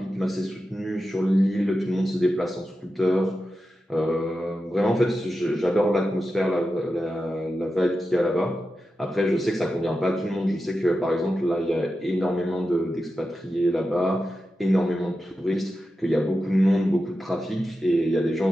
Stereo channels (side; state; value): both; normal; correlation 0.91